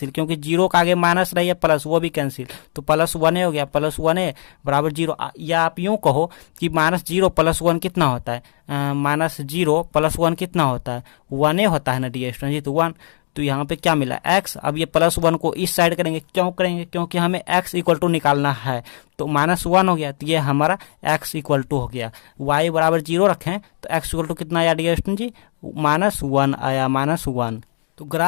क्योंकि 0 का आगे माइनस रही है प्लस, वो भी कैंसिल। तो +1a हो गया, +1a = 0। या आप यूं कहो कि -0 + 1 कितना होता है, -0 + 1 कितना होता है, 1a होता है ना डियर स्टूडेंट जी, तो 1। तो यहाँ पे क्या मिला x। अब ये +1 को इस साइड करेंगे, क्यों करेंगे, क्योंकि हमें x = निकालना है। तो -1 हो गया, तो ये हमारा x = हो गया। y = 0 रखें तो x = कितना आया डियर स्टूडेंट जी, -1 आया, -1। तो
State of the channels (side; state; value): right; silent; digital silence